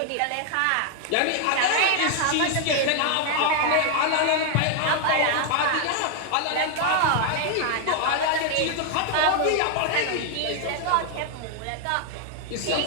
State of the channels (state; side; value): different; both; correlation 0.00